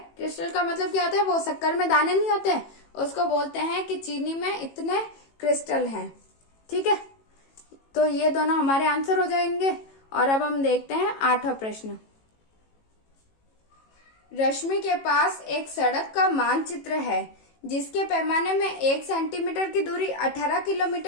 क्रिस्टल का मतलब क्या होता है, वो शक्कर में दाने नहीं होते, उसको बोलते हैं कि चीनी में इतने क्रिस्टल हैं। ठीक है, तो ये दोनों हमारे आंसर हो जाएंगे और अब हम देखते हैं 8वां प्रश्न। रश्मि के पास एक सड़क का मानचित्र है जिसके पैमाने में 1 सेंटीमीटर की दूरी 18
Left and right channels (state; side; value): late; right; 18 ms